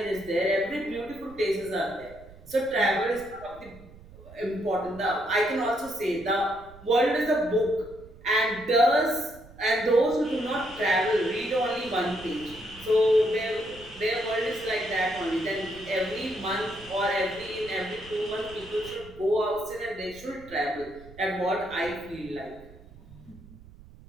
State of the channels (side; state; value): right; noise; rumble, 20 dB below the sound